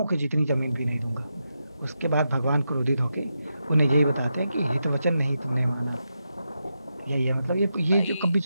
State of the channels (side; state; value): both; inverted; correlation -0.86